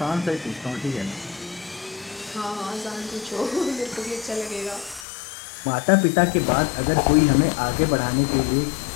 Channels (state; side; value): drops out; right; at 5.1 s